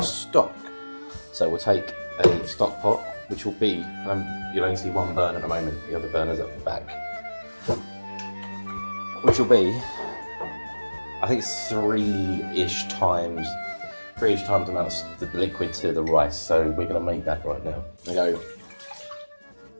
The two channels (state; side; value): inverted; both; correlation -1.00